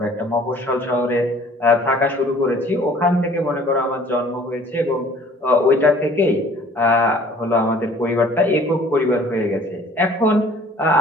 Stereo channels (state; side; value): normal; both; correlation 0.53